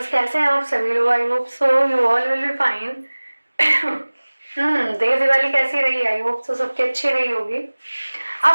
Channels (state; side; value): inverted; both; correlation -1.00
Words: कैसे हैं आप सभी लोग? I hope so you all will be fine. Dev Diwali कैसी रही? आई होप सो सबकी अच्छी रही होगी।